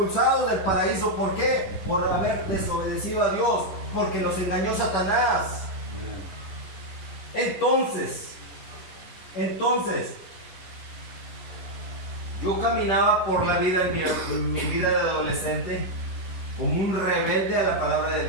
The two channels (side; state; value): right; late; 11 ms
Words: del paraíso. ¿Por qué? Por haber desobedecido a Dios. Porque los engañó Satanás. Entonces, yo caminaba por la vida en mi vida de adolescente como un rebelde a la palabra de